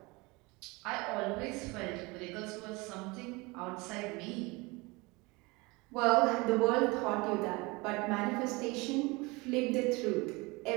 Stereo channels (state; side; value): quieter; left; 25.0 dB